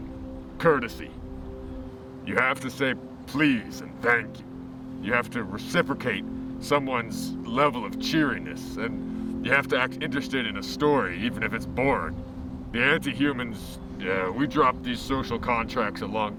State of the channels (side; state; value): both; identical; correlation 1.00